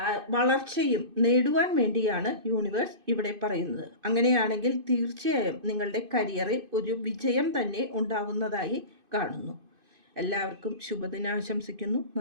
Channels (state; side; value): late; left; 2.5 ms